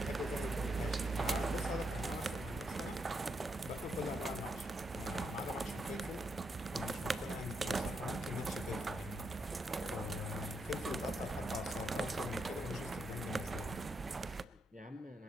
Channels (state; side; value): normal; both; correlation 0.80